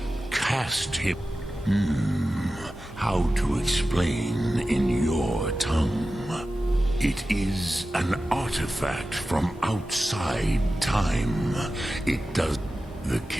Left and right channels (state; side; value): normal; both; correlation 0.94